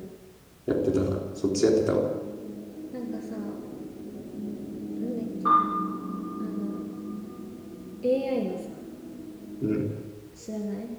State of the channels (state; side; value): identical; both; correlation 1.00